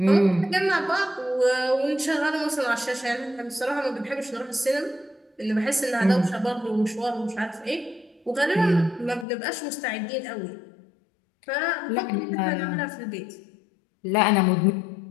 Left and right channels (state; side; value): drops out; right; at 9.2 s